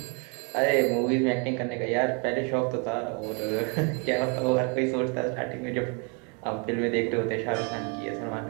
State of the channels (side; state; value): left; quieter; 35.7 dB